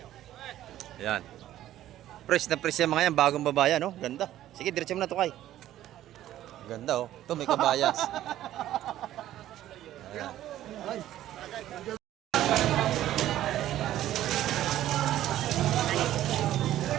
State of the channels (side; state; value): left; quieter; 13.1 dB